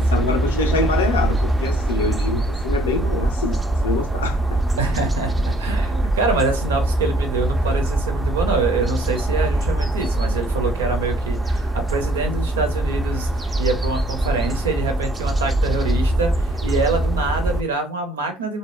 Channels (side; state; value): both; normal; correlation 0.60